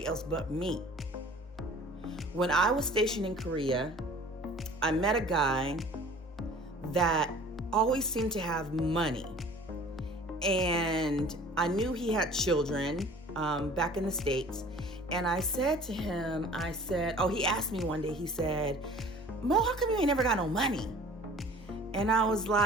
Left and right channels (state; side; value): normal; both; correlation 0.47